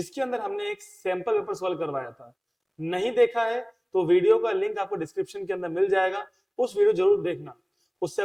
अंदर हमने एक सैंपल पेपर सॉल्व करवाया था। नहीं देखा है तो वीडियो का लिंक आपको डिस्क्रिप्शन के अंदर मिल जाएगा, उस वीडियो जरूर देखना। उससे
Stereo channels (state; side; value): identical; both; correlation 1.00